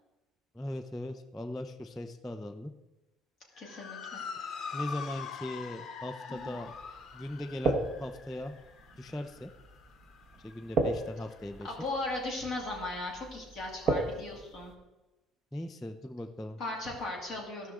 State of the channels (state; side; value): normal; both; correlation 0.67